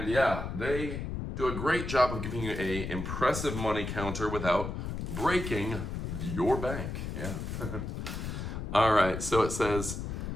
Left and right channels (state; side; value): noise; left; rumble, 5 dB below the sound